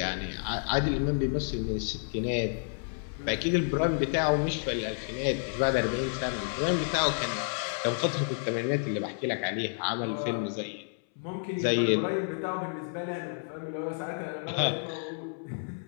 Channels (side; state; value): right; silent; 58 dB below the other